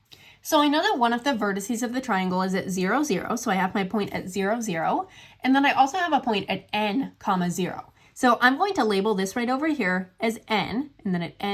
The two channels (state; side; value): identical; both; correlation 1.00